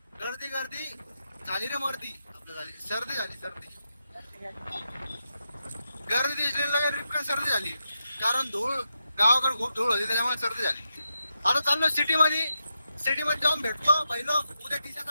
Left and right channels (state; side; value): inverted; both; correlation -0.86